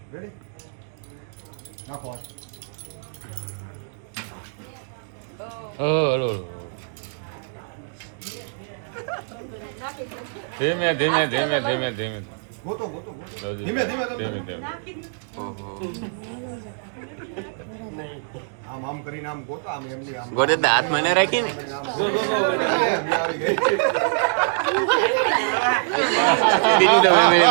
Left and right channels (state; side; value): silent; left; digital silence